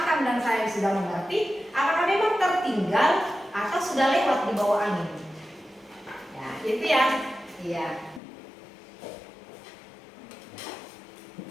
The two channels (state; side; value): drops out; right; at 8.2 s